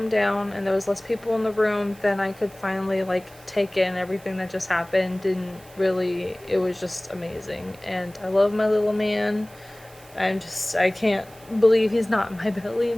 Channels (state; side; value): noise; right; hiss, 24 dB below the sound